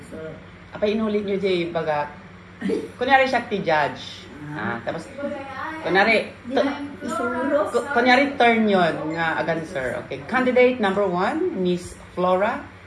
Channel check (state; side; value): identical; both; correlation 1.00